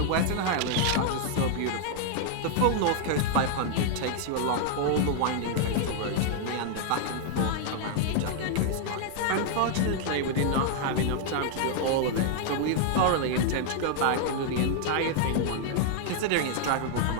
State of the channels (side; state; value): both; different; correlation 0.00